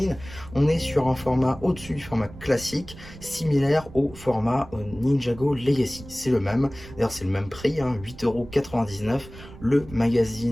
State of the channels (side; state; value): right; noise; rumble, 17 dB below the sound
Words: on est sur un format au-dessus du format classique, similaire au format Ninjago Legacy. C'est le même, d'ailleurs c'est le même prix, hein, 8,99 €, le